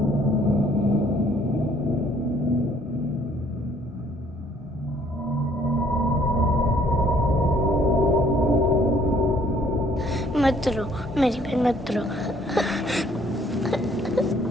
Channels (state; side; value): normal; both; correlation 0.62